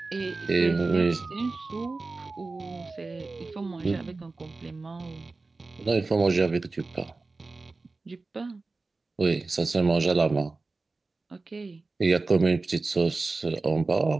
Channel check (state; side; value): quieter; left; 3.6 dB